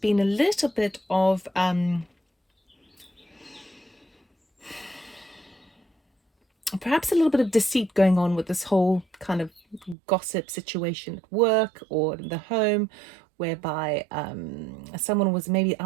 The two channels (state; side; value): drops out; left; at 10.0 s